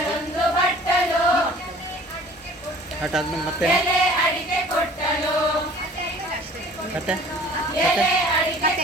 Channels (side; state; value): both; normal; correlation 0.49